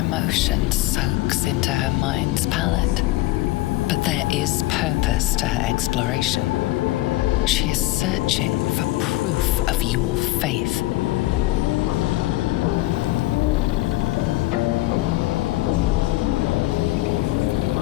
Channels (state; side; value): quieter; right; 17.9 dB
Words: soaks into her mind's palette. But there is purpose to her exploration. She is searching for proof of your faith.